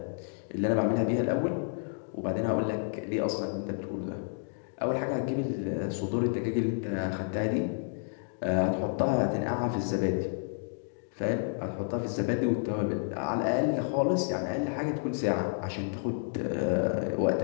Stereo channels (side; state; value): right; silent; digital silence